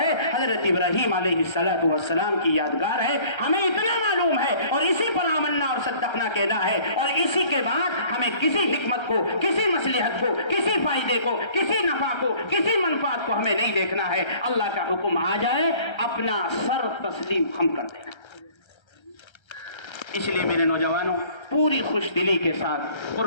حضرت ابراہیم علیہ السلام کی یادگار ہے، ہمیں اتنا معلوم ہے اور اسی پر آمنا اور صدقنا کہنا ہے، اور اسی کے بعد ہمیں کسی حکمت کو، کسی مصلحت کو، کسی فائدے کو، کسی نفع کو، کسی منفعت کو ہمیں نہیں دیکھنا ہے۔ اللہ کا حکم آ جائے اپنا سر تسلیم ہم کر دینا۔ اس لیے میرے نوجوانوں، پوری خوش دلی کے ساتھ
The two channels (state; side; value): late; right; 1.3 ms